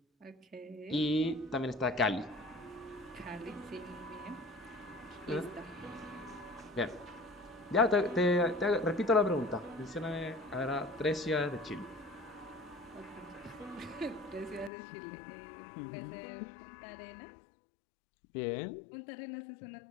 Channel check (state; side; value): drops out; right; at 14.7 s